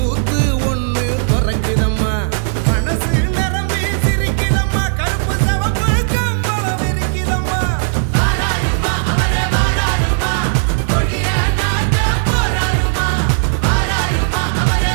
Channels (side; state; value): left; silent; digital silence